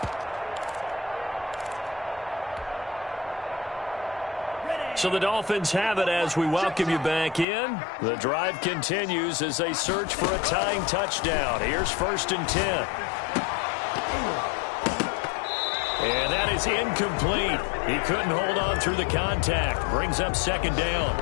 So the Dolphins have it as we welcome you back in. The drive continues as they search for a tying touchdown. Here's 1st and 10. And that is incomplete. He couldn't hold on through the contact. Brings up 2nd down.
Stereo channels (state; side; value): drops out; right; at 7.5 s